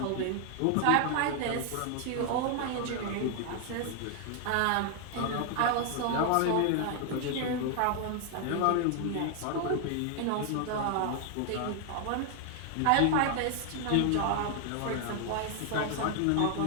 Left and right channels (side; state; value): both; different; correlation 0.00